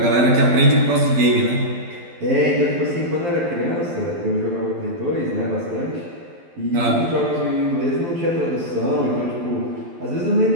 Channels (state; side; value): late; left; 12 ms